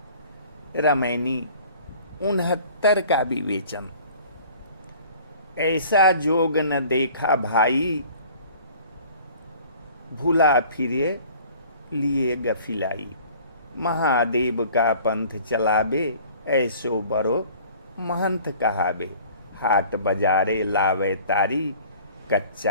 रामायणी 69 का विवेचन। ऐसा जोग न देखा भाई, भूला फिरे लिए गफिलाई। महादेव का पंथ चलाबे, ऐसो बरो महंत कहाबे। हाट बजारे लावे तारी,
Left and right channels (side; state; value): both; inverted; correlation -0.50